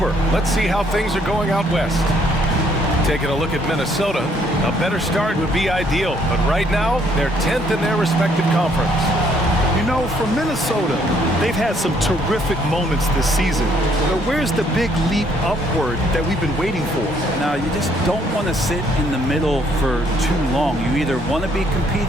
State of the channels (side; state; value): both; normal; correlation 0.66